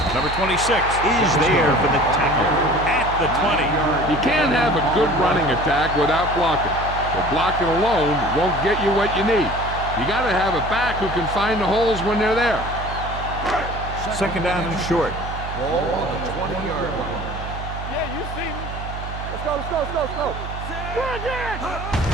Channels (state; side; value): noise; right; hum, 8 dB below the sound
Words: Number 26 is there for the tackle at the 20. You can't have a good running attack without blocking. But blocking alone won't get you what you need. You got to have a back who can find the holes when they're there. Second down and short. Ball on the 20-yard line. Yeah, you see me. Let's go, let's go, let's go, let's go. Good again.